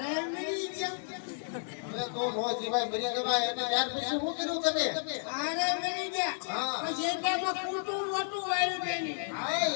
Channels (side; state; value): right; silent; 56 dB below the other